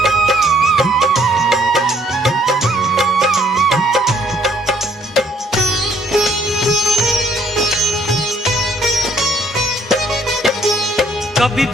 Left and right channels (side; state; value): both; normal; correlation 0.64